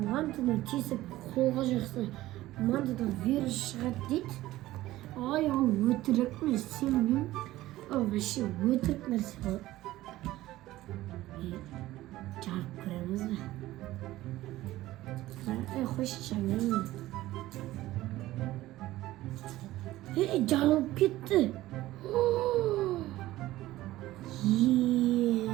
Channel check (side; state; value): left; quieter; 16.2 dB